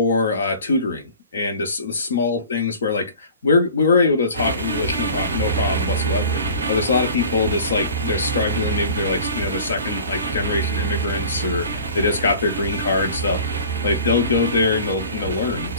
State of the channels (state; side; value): inverted; both; correlation -0.44